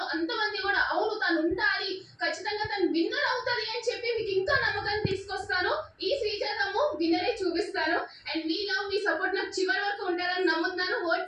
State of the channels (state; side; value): identical; both; correlation 1.00